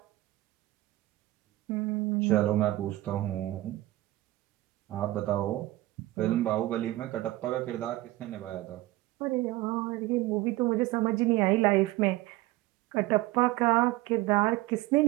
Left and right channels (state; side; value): quieter; left; 17.6 dB